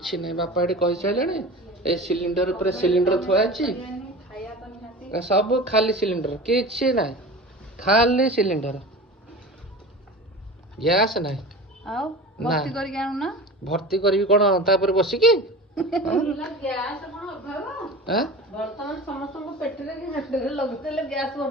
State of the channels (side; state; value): both; normal; correlation 0.34